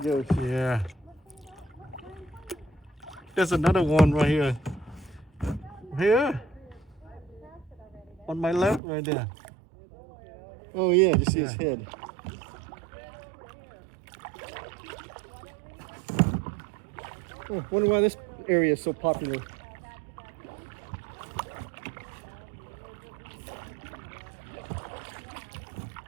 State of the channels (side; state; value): left; drops out; at 8.8 s